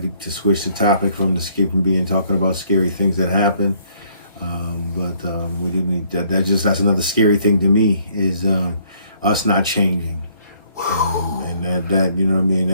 To switch the topic from talking about scary things that happen. But we do need that. That's another scary thing to me is us not changing. And that you know what I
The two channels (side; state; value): both; inverted; correlation -0.64